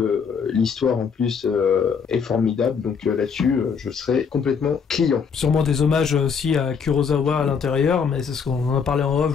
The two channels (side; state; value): right; quieter; 6.2 dB